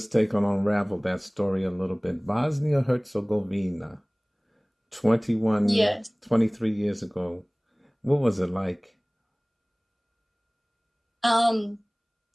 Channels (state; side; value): identical; both; correlation 1.00